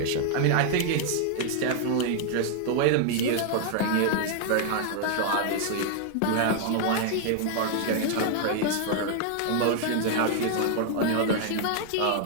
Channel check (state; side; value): different; both; correlation 0.00